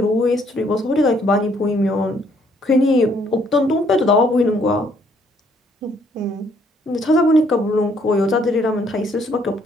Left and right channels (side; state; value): both; normal; correlation 0.66